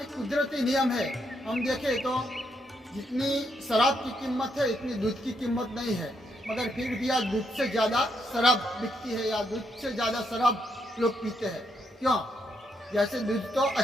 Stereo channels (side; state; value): both; normal; correlation 0.77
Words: एक कुदरती नियम है। हम देखें तो जितनी शराब की कीमत है इतनी दूध की कीमत नहीं है, मगर फिर भी आज दूध से ज़्यादा शराब बिकती है या दूध से ज़्यादा शराब लोग पीते हैं। क्यों? जैसे दूध तो